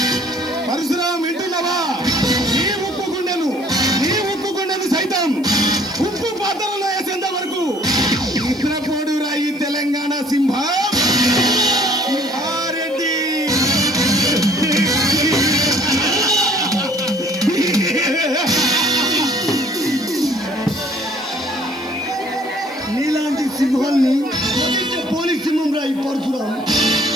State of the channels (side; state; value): left; noise; hiss, 26 dB below the sound